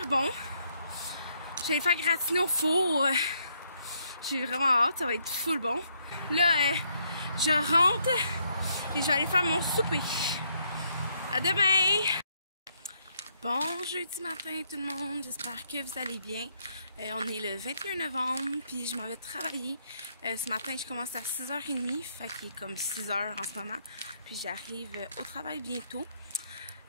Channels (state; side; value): inverted; both; correlation -0.73